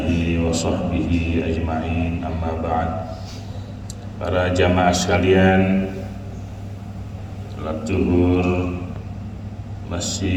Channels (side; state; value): both; identical; correlation 1.00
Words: wa sahbihi ajma'in, amma ba'd. Para jamaah sekalian, salat zuhur